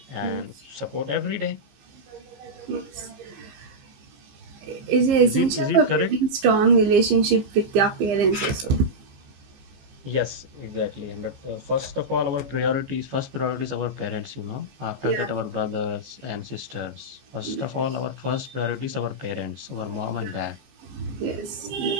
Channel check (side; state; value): left; late; 15 ms